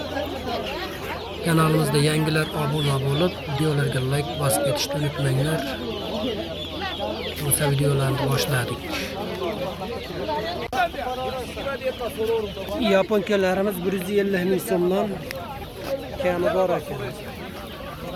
Kanalimizda yangilar obuna bo'lib, videolarga like bosib ketishni unutmanglar. O'sha videolarni boshladik. Yaponkalarimiz 150 ming so'mdan kami bor ekan.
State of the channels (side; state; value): both; identical; correlation 1.00